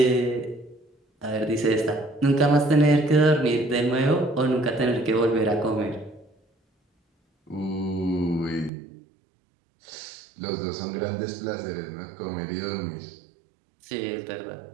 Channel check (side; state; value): left; drops out; at 8.7 s